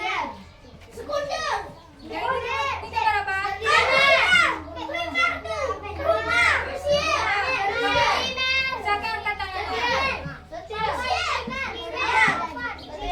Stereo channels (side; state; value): both; identical; correlation 1.00